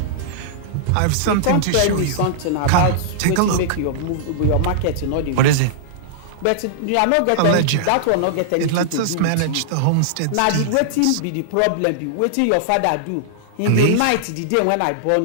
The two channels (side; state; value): both; different; correlation -0.01